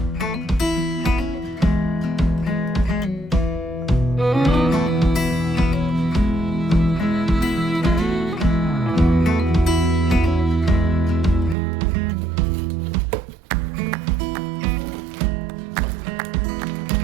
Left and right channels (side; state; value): left; drops out; at 11.6 s